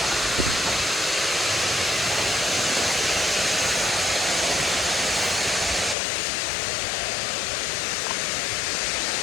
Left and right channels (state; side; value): drops out; right; at 6.0 s